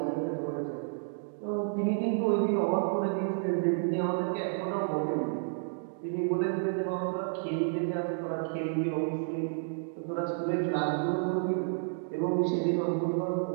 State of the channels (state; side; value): silent; left; digital silence